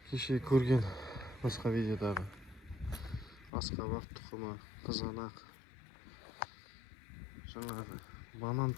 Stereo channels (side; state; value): right; drops out; at 3.5 s